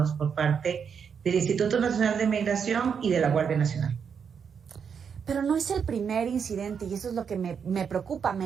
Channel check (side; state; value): left; quieter; 6.9 dB